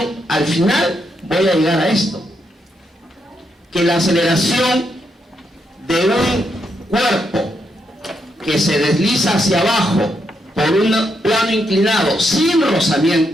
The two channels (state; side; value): normal; both; correlation 0.80